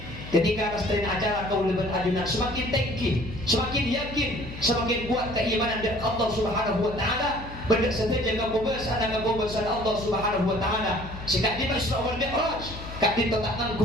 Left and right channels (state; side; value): noise; left; hum, 12 dB below the sound